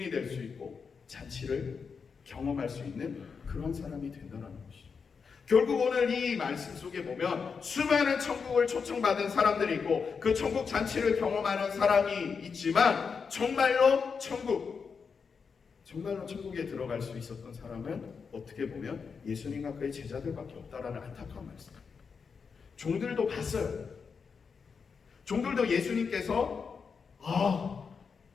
될 수 있고 잔치를 경험할 수 있는 그런 사람이 된다는 것이죠. 결국 오늘 이 말씀 속에 보면 수많은 천국을 초청받은 사람들이 있고 그 천국 잔치를 경험하는 사람이 있지만, 정말로 천국에 들어갈 수 있었던 사람은 어떻게 보면 예수님과 그의 제자들밖에 없다라는 안타까운 말씀. 종들도 봤어요. 종들도 예수님께서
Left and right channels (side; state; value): right; quieter; 5.7 dB